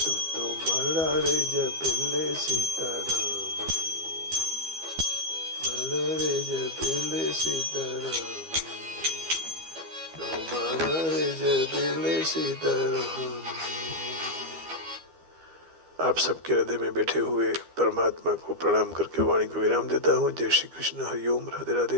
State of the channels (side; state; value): left; late; 12 ms